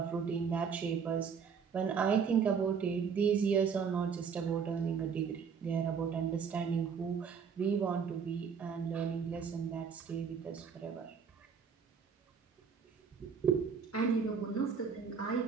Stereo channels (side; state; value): left; quieter; 6.4 dB